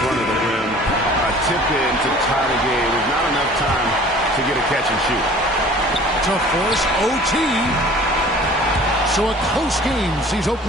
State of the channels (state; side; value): normal; both; correlation 0.48